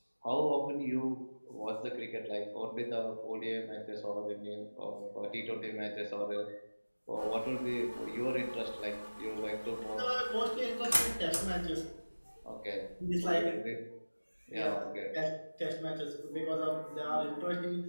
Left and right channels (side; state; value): both; inverted; correlation -1.00